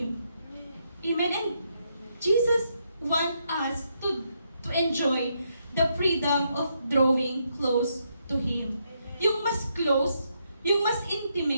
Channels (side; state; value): both; inverted; correlation -0.78